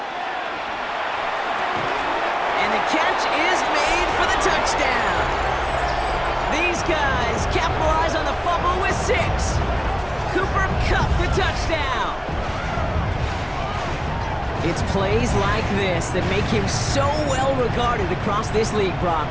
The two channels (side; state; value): both; identical; correlation 1.00